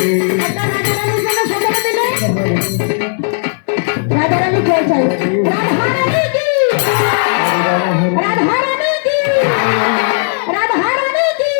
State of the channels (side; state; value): right; silent; digital silence